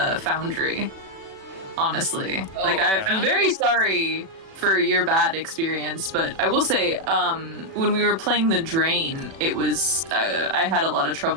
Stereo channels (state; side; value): late; left; 36 ms